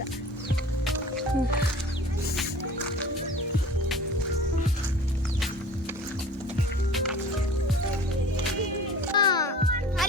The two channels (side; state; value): both; normal; correlation 0.43